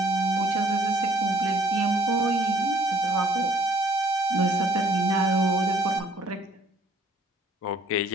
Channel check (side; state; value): both; normal; correlation 0.60